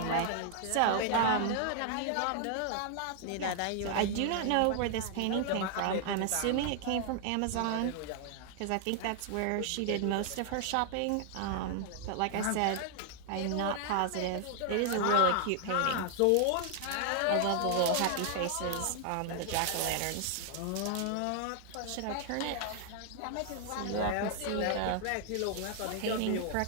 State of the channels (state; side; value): different; both; correlation 0.00